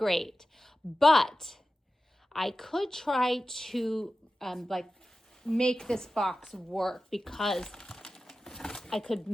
But I could try to make this box work, because I could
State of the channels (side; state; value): both; normal; correlation 0.94